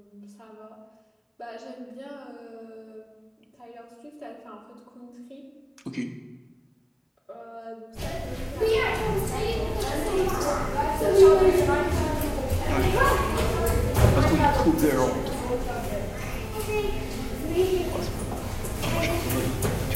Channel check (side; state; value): both; identical; correlation 1.00